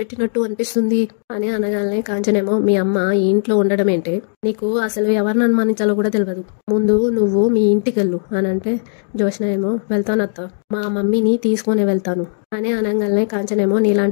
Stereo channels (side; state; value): right; silent; digital silence